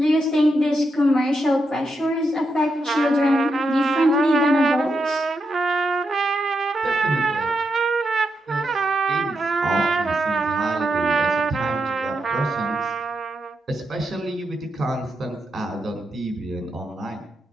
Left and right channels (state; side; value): normal; both; correlation 0.84